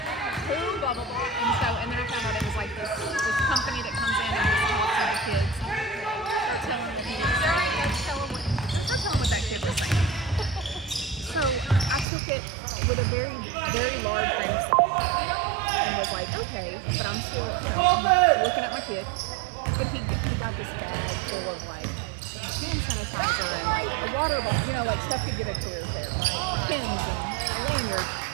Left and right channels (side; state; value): left; drops out; at 12.1 s